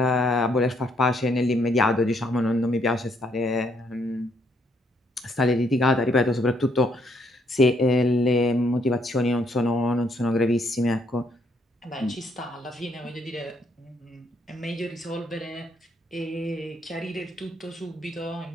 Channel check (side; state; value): both; normal; correlation 0.71